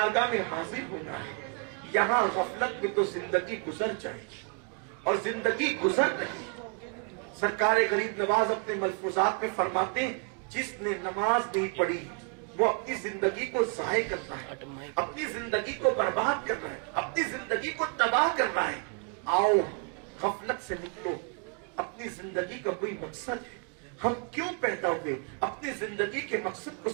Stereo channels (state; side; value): quieter; left; 37.8 dB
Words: میں حاضر ہونا ہے. یہاں غفلت میں تو زندگی گزر جائے گی اور زندگی گزر رہی. سرکار غریب نواز اپنے ملفوظات میں فرماتے ہیں جس نے نماز نہیں پڑھی وہ اپنی زندگی کو ضائع کرتا ہے, اپنی زندگی کو برباد کر رہا ہے, اپنی زندگی کو تباہ کر رہا ہے. آؤ غفلت سے نکلو, اپنی زندگی کا کوئی مقصد ہے, ہم کیوں پیدا ہوئے, اپنی زندگی کے مقصد کو